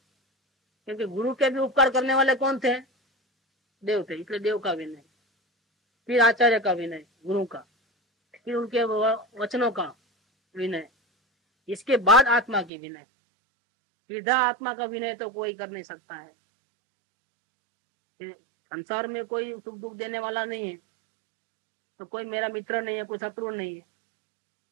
क्योंकि गुरु के भी उपकार करने वाले कौन थे? देव थे, इसलिए देव का विनय। फिर आचार्य का विनय, गुरु का, फिर उनके वचनों का विनय, इसके बाद आत्मा की विनय। सीधा आत्मा का विनय तो कोई कर नहीं सकता है। संसार में कोई सुख दुख देने वाला नहीं है, तो कोई मेरा मित्र नहीं है, कोई शत्रु नहीं है।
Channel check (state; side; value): drops out; left; at 12.7 s